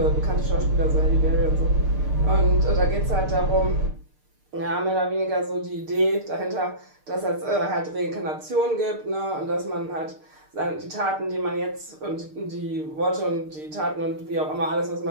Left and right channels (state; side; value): late; left; 6.6 ms